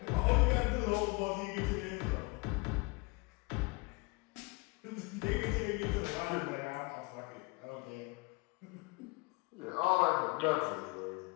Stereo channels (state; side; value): quieter; right; 26.6 dB